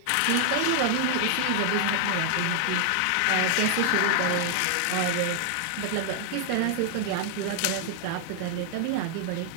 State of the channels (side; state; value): both; different; correlation 0.00